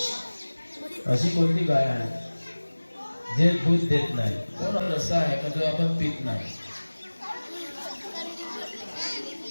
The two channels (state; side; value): inverted; both; correlation -1.00